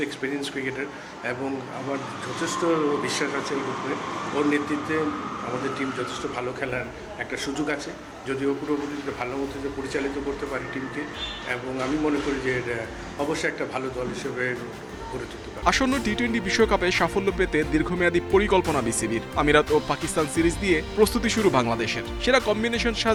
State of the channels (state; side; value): identical; both; correlation 1.00